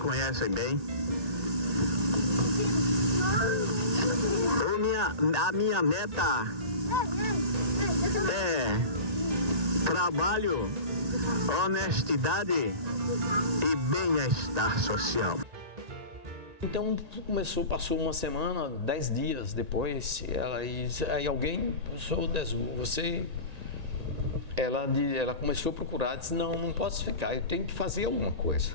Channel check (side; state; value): left; late; 1.8 ms